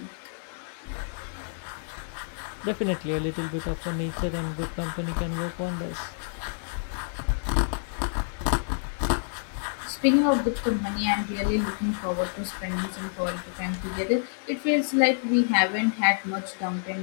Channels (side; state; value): right; silent; digital silence